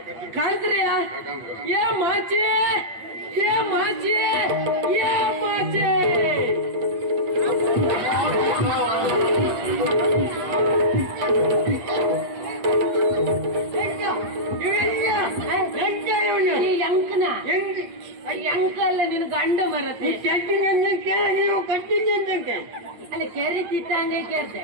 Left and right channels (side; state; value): left; late; 8.6 ms